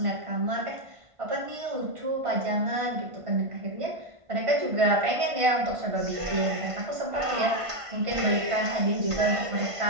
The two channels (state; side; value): late; left; 1.5 ms